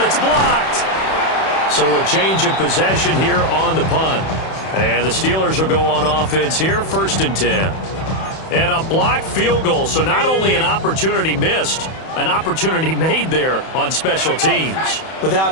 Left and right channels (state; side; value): late; right; 31 ms